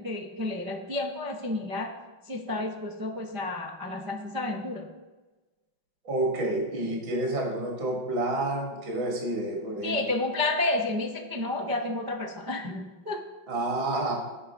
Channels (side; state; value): left; late; 5.5 ms